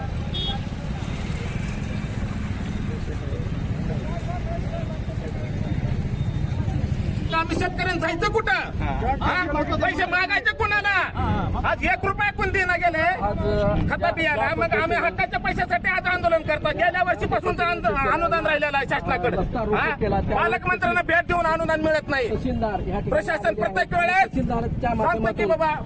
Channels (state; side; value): identical; both; correlation 1.00